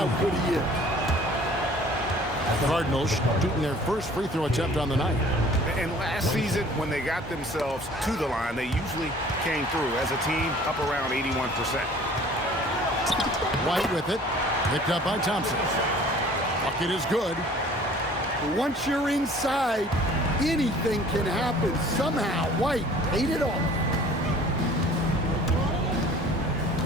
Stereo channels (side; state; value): both; normal; correlation 0.50